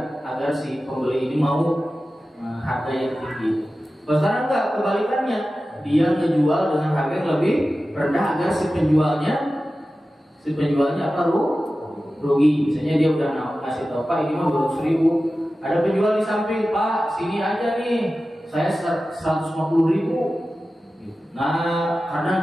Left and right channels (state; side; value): normal; both; correlation 0.94